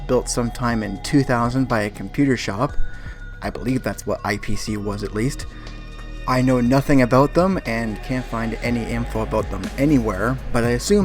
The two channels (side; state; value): both; identical; correlation 1.00